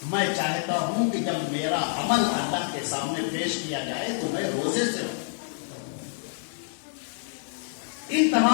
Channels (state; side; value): silent; right; digital silence